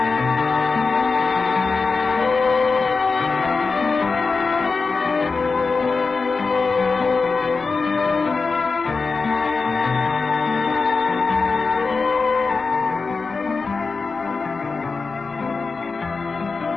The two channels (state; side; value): quieter; right; 4.3 dB